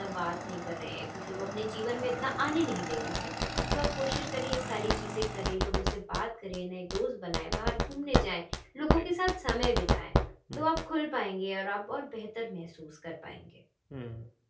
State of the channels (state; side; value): identical; both; correlation 1.00